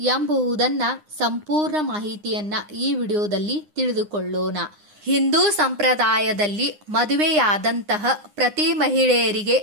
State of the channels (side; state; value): left; late; 9.8 ms